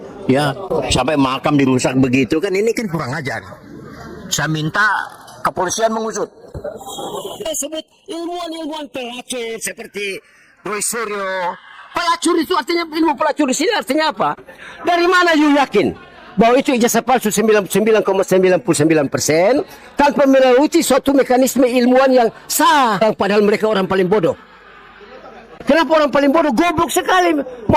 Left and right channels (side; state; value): both; identical; correlation 1.00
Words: Ya, sampai makam dirusak begitu kan, ini kan kurang ajar. Saya minta kepolisian mengusut. Saya sebut ilmuwan-ilmuwan pelacur seperti Roy Suryo. Pelacur itu artinya, ilmu pelacur di sini artinya apa? Dari mana you yakin bahwa itu ijazah palsu 99,99% tanpa melalui suatu mekanisme ilmuwan yang sah, padahal mereka orang paling bodoh. Kenapa orang paling bodoh? Goblok sekali